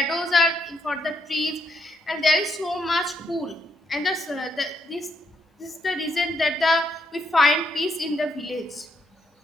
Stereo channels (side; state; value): both; normal; correlation 0.76